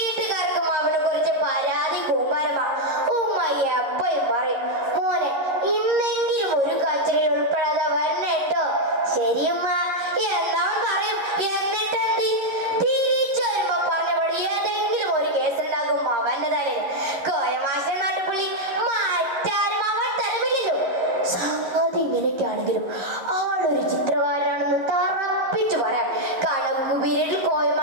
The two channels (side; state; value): left; late; 11 ms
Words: അവനെ കുറിച്ച് പരാതി കൂമ്പാരമാ. ഉമ്മ എപ്പോഴും പറയും, മോനെ ഇന്നെങ്കിലും ഒരു കച്ചറയിൽ ഉൾപ്പെടാതെ വരണേട്ടോ. ശരിയമ്മ എന്താ പറയും. എന്നിട്ടെന്ത് തിരിച്ചു വരുമ്പോ പറഞ്ഞപടി ഏതെങ്കിലും ഒരു കേസുണ്ടാകും അവന്റെ തലയിൽ. കോയമാശൻ നാട്ടുപുള്ളി മാറ്റാനും അവൻ തലമില്ലല്ലോ. സംഗതി ഇങ്ങനെയൊക്കെയാണെങ്കിലും ആളൊരു ചിത്രകാരനാണെന്ന് തറപ്പിച്ചു പറയാം. കണക്ക് പീരീഡിൽ